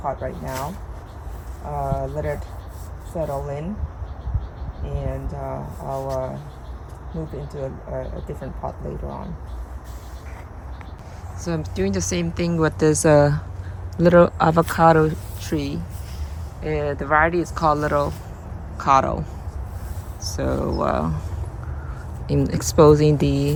pot right now, let it settle in, and I'll move into a different pot later on. So I'm doing the same thing with this little avocado tree. The variety is called Little Cotto. So in exposing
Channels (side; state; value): both; identical; correlation 1.00